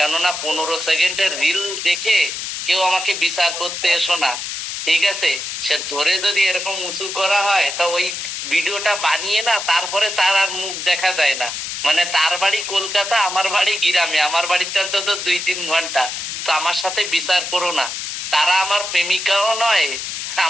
15 সেকেন্ডের রিল দেখে কেউ আমাকে বিচার করতে এসো না, ঠিক আছে? সে ধরে যদি এরকম উঁচু করা হয় তা ওই ভিডিওটা বানিয়ে না, তারপরে তার আর মুখ দেখা যায় না। মানে তার বাড়ি কলকাতা, আমার বাড়ি গ্রামে, আমার বাড়িতে অন্তত 2-3 ঘন্টা। তো আমার সাথে বিচার করো না। তারা আমার প্রেমিকাও নয়,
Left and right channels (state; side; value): noise; left; hiss, 5 dB below the sound